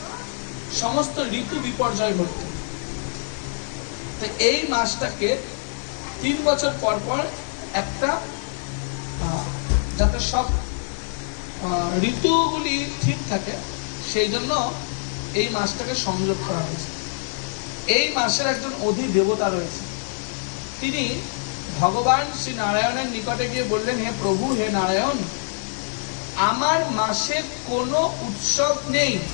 সমস্ত ঋতু বিপর্যয় ঘটতো। তো এই মাসটাকে 3 বছর পর পর একটা যাতে সব ঋতুগুলি ঠিক থাকে সেই জন্য এই মাসটাকে সংযোগ করা হয়েছে। এই মাসের একজন অধি দেবতা রয়েছে, তিনি ভগবান শ্রী নারায়ণের নিকটে গিয়ে বললেন, হে প্রভু, হে নারায়ণ, আমার মাসে কোনো উৎসব নেই,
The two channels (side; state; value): right; silent; 58 dB below the other